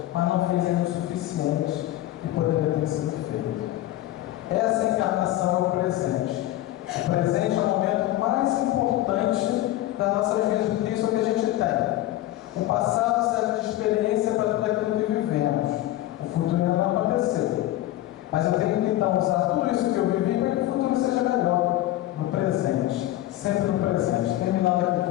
mas não fez ainda o suficiente que poderia ter sido feito. Essa encarnação é o presente. O presente é o momento mais importante das nossas vidas, porque isso é o que a gente tem. O passado serve de experiência para tudo aquilo que vivemos. O futuro ainda não aconteceu. Mas eu tenho que então usar tudo isso que eu vivi para que o futuro seja melhor no presente. Sempre no presente. Terminando aqui com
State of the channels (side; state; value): right; quieter; 15.0 dB